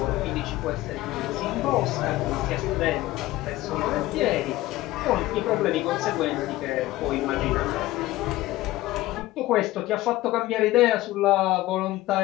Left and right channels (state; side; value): quieter; right; 17.1 dB